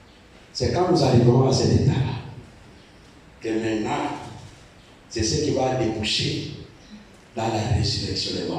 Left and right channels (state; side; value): identical; both; correlation 1.00